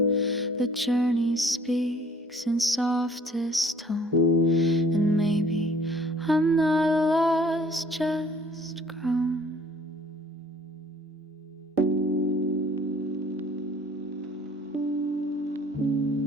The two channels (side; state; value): both; normal; correlation 0.55